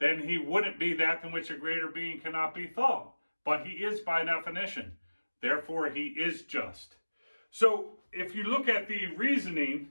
he wouldn't be that than which a greater being cannot be thought. But he is by definition. Therefore, he is just. So if you look at the reasoning,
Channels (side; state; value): both; inverted; correlation -1.00